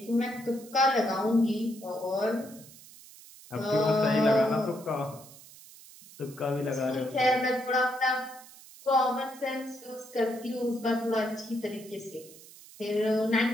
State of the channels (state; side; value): noise; right; hiss, 20 dB below the sound